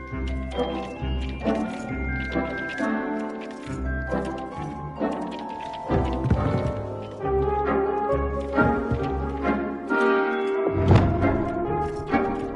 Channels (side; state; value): both; identical; correlation 1.00